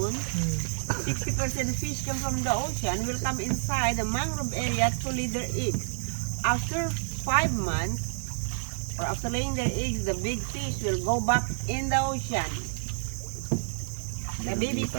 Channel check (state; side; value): silent; left; digital silence